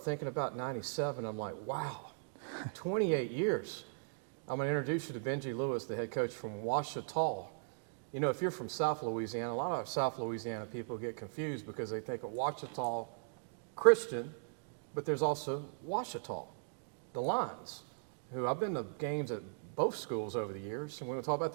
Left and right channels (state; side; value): silent; left; digital silence